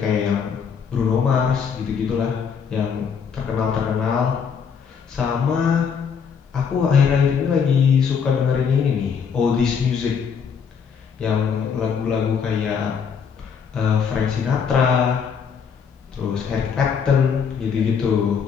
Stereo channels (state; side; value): quieter; right; 6.6 dB